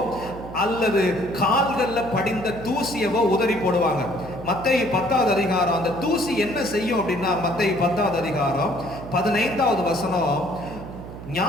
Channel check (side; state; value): right; noise; hum, 12 dB below the sound